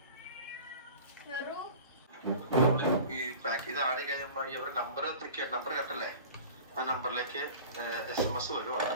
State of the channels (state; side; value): inverted; both; correlation -0.40